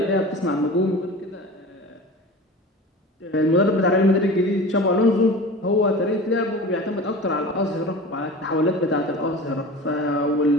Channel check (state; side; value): normal; both; correlation 0.35